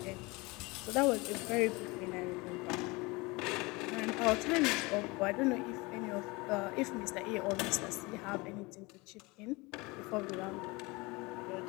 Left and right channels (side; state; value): right; quieter; 24.7 dB